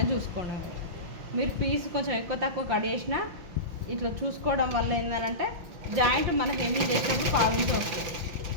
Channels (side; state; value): left; late; 6.0 ms